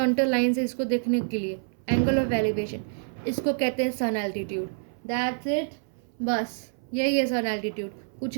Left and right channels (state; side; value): silent; left; 60 dB below the other